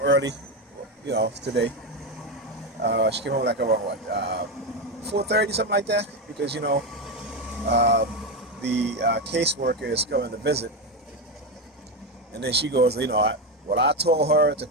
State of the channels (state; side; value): normal; both; correlation 0.12